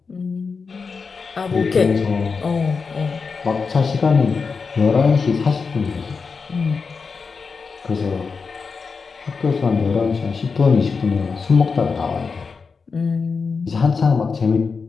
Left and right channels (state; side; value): quieter; right; 5.0 dB